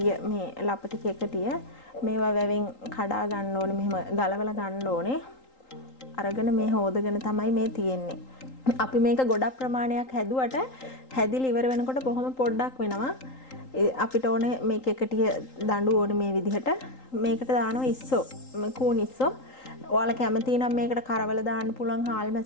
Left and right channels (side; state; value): right; late; 3.8 ms